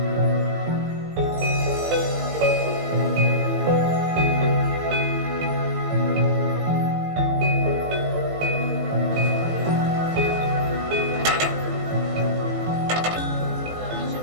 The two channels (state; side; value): late; left; 19 ms